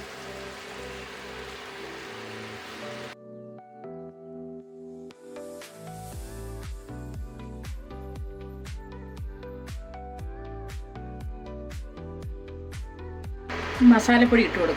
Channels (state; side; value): identical; both; correlation 1.00